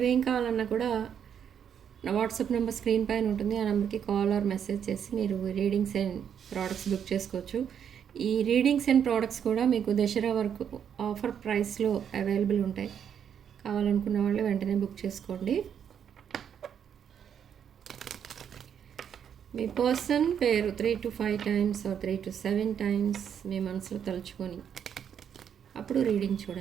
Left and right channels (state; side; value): quieter; left; 8.3 dB